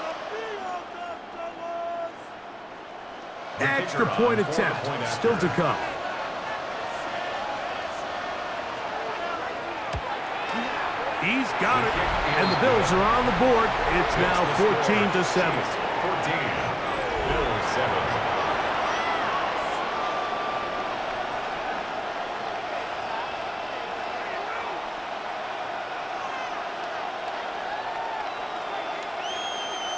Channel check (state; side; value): identical; both; correlation 1.00